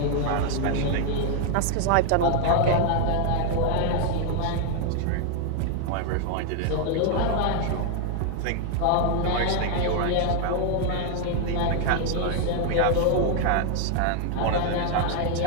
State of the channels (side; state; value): both; different; correlation 0.00